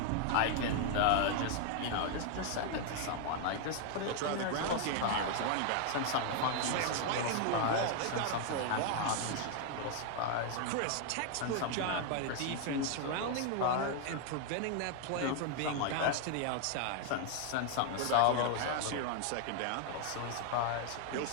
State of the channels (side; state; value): both; different; correlation 0.00